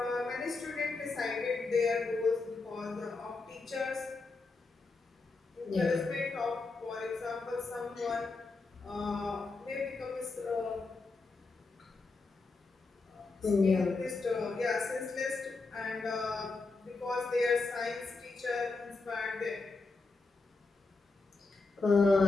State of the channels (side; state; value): right; quieter; 3.8 dB